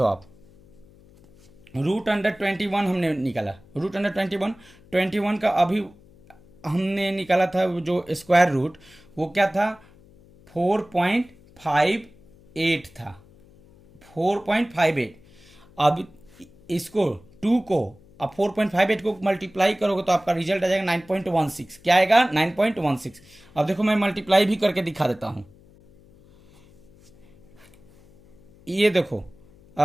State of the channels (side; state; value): left; noise; hum, 26 dB below the sound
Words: आप। रूट अंडर 21 हमने निकाला। रूट अंडर 21 का अभी हमने निकाला था जो स्क्वायर रूट वो क्या था 4.58 था 4.58। अब इसको 2 को अब 4.58 को मल्टीप्लाई करोगे तो आपका रिजल्ट आ जाएगा 9.16। क्या आएगा 9.16। अब देखो मैं मल्टीप्लाई भी करके दिखा देता हूं। ये देखो